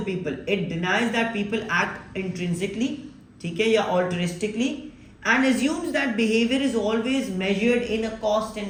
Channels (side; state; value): both; identical; correlation 1.00